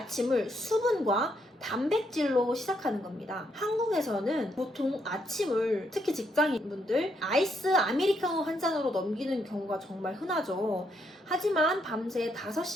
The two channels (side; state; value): both; normal; correlation 0.76